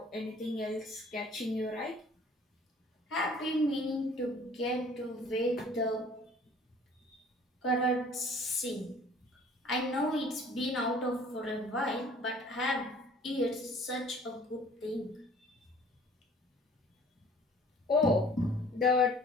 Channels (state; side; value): normal; both; correlation 0.52